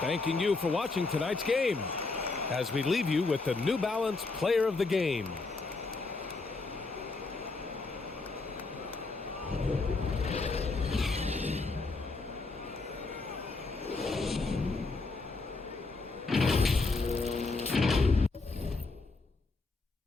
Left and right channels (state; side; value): quieter; right; 3.7 dB